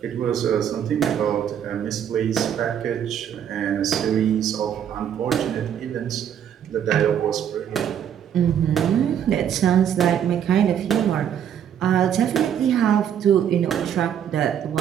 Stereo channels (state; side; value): quieter; left; 9.2 dB